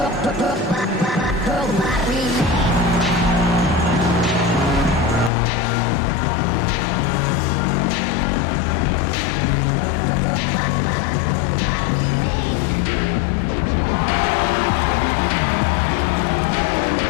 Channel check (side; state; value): right; drops out; at 5.3 s